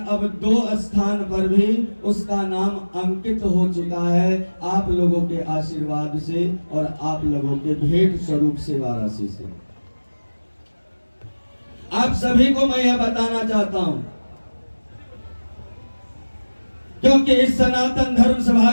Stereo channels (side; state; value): both; inverted; correlation -1.00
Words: 2 स्थान पर भी उसका नाम अंकित हो चुका है आप लोगों के आशीर्वाद से और आप लोगों के भेंट स्वरूप से वाराणसी से। आप सभी को मैं यह बताना चाहता हूं, क्योंकि इस सनातन धर्म सभा